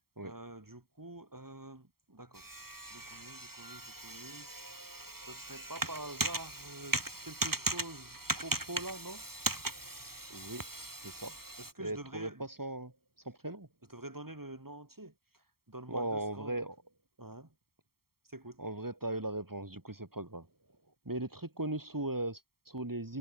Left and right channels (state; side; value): late; left; 0.94 ms